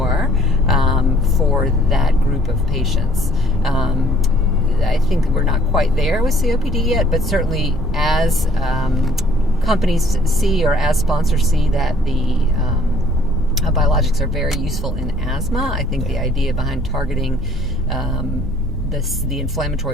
for that group of patients. I think we're not quite there with COPD yet, but certainly as companies see or as sponsors see that the biologics are very useful in asthma, I think the idea behind targeting the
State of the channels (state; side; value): normal; both; correlation 0.58